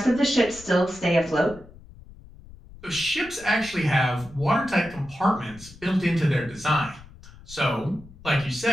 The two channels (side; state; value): left; noise; rumble, 20 dB below the sound